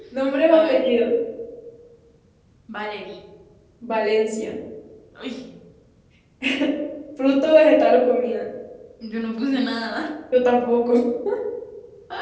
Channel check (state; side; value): identical; both; correlation 1.00